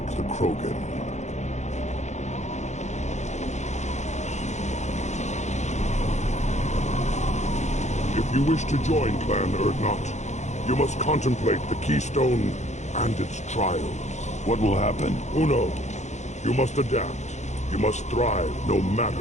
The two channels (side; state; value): right; late; 0.33 ms